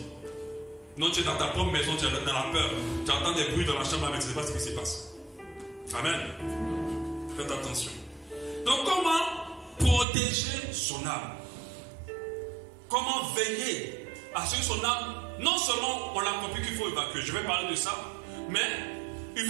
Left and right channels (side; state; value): left; drops out; at 10.1 s